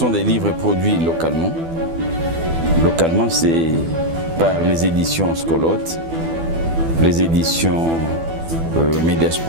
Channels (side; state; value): left; late; 12 ms